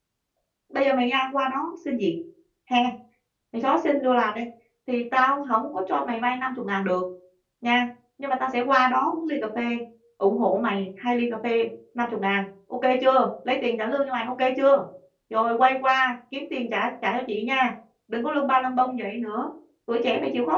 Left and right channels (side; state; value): both; identical; correlation 1.00